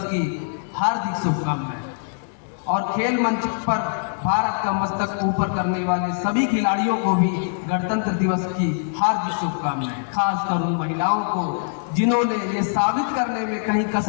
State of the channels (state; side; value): silent; right; digital silence